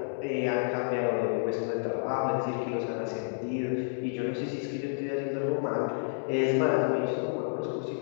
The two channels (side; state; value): right; silent; digital silence